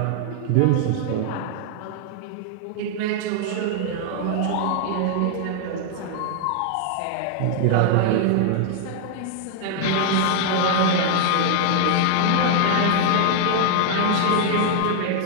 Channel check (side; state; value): both; different; correlation -0.01